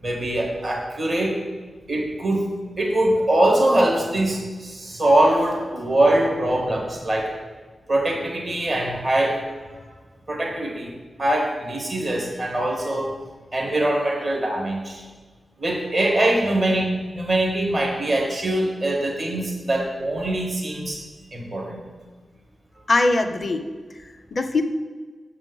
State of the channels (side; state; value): both; normal; correlation 0.92